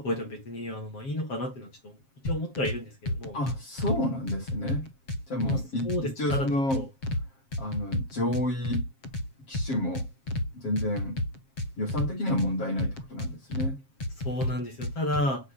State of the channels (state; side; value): late; right; 7.5 ms